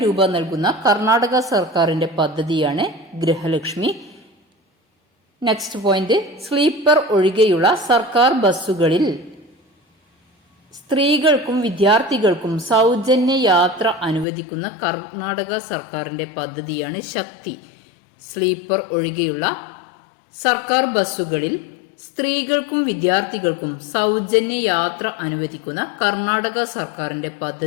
രൂപ നൽകുന്ന കർണാടക സർക്കാരിന്റെ പദ്ധതിയാണ് ഗൃഹലക്ഷ്മി. നെക്സ്റ്റ് പോയിന്റ്, സ്ലീപ്പർ ഒഴികെയുള്ള സർക്കാർ ബസ്സുകളിൽ സ്ത്രീകൾക്കും വിദ്യാർത്ഥികൾക്കും സൗജന്യ യാത്ര അനുവദിക്കുന്ന കർണാടക സർക്കാരിന്റെ പദ്ധതിയാണ് ശക്തി. സ്ലീപ്പർ ഒഴികെയുള്ള സർക്കാർ ബസ്സുകളിൽ സ്ത്രീകൾക്കും വിദ്യാർത്ഥികൾക്കും സൗജന്യ യാത്ര അനുവദിക്കുന്ന കർണാടക സർക്കാരിന്റെ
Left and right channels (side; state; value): right; drops out; at 14.2 s